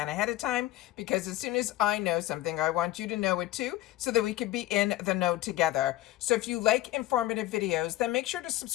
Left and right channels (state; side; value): quieter; right; 15.5 dB